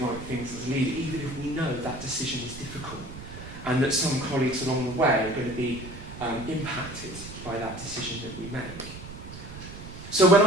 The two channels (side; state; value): right; noise; rumble, 13 dB below the sound